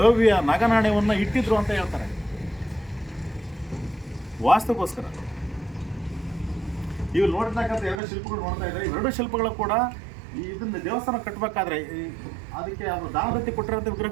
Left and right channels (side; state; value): left; drops out; at 8.0 s